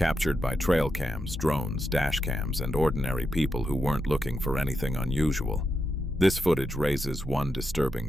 by trail cams, drones, dash cams, and ordinary people who weren't looking for anything unusual. This footage raises one disturbing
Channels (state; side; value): normal; both; correlation 0.85